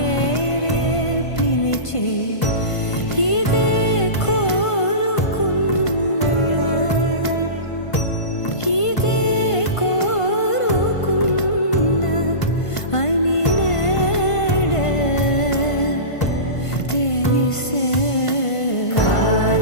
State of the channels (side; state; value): right; late; 1.5 ms